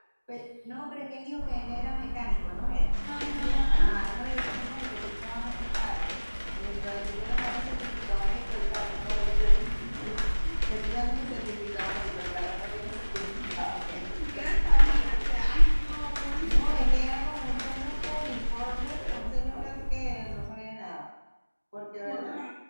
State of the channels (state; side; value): inverted; both; correlation -1.00